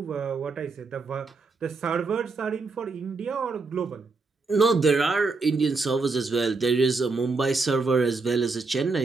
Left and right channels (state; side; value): quieter; left; 4.0 dB